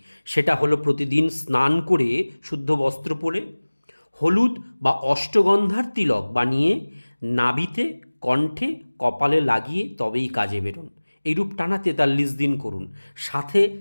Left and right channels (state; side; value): inverted; both; correlation -1.00